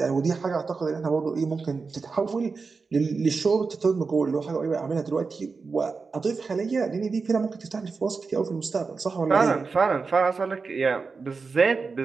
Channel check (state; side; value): quieter; left; 4.6 dB